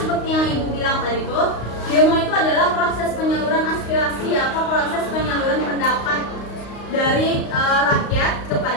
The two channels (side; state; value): right; late; 35 ms